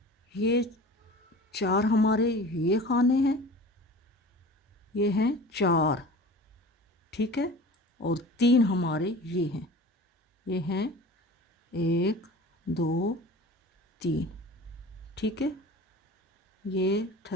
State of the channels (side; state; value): both; normal; correlation 0.39